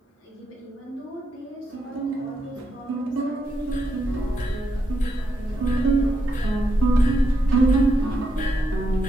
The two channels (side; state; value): both; normal; correlation 0.80